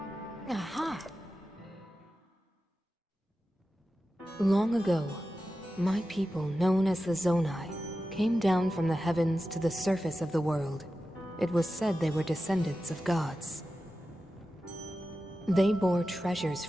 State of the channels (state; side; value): normal; both; correlation 0.93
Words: Aha! Long ago, my people, known as the Zonai, came down from the heavens to the surface of the world. It was said they were descendants of gods. They bore treasures